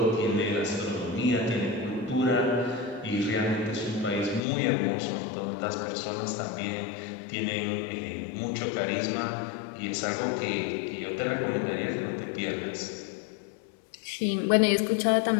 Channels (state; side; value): drops out; right; at 4.4 s